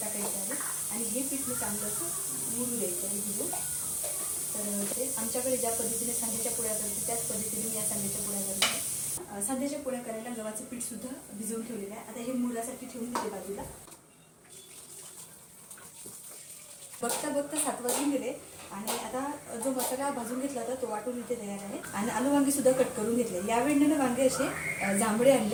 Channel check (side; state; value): both; identical; correlation 1.00